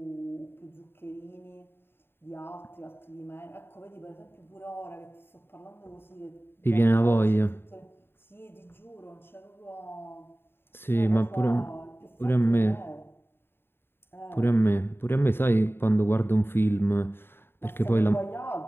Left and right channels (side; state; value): right; late; 0.11 ms